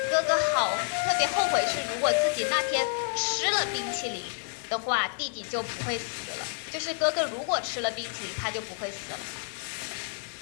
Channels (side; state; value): right; silent; 59 dB below the other